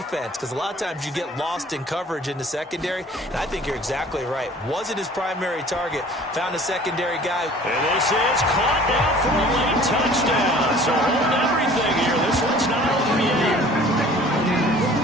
because a lot of times you get lost in coverage in the secondary, and I think you're exactly right. Wasn't his primary target. Found a secondary guy. And this is caught down for a late touchdown. So hold everything here. This one's not over yet.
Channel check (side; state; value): both; normal; correlation 0.49